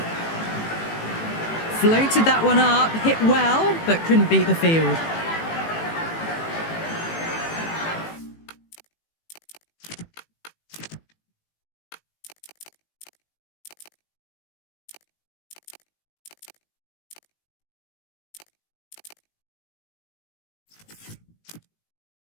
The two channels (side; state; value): right; late; 18 ms